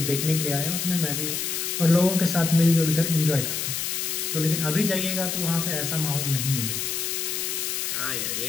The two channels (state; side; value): noise; left; hiss, 2 dB below the sound